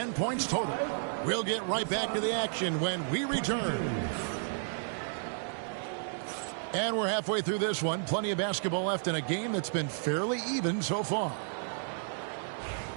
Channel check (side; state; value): left; silent; digital silence